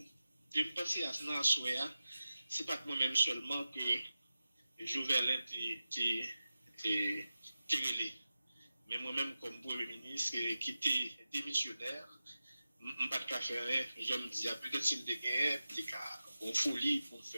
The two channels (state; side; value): inverted; both; correlation -0.94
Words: Je me pense à ce moment-là, c'est pas moi-même seulement que Jovelin était relé. Mais moi-même, comme Premier ministre, qui était démissionnaire, je ne pas de faire, je me dis, peut-être si je gagne, peut-être en folie pour me